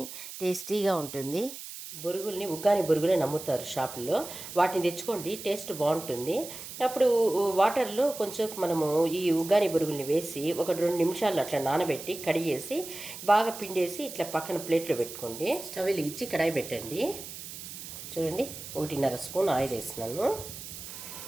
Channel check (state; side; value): noise; right; hiss, 11 dB below the sound